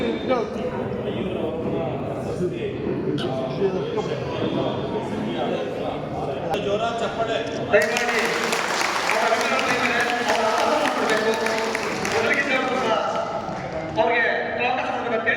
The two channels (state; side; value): identical; both; correlation 1.00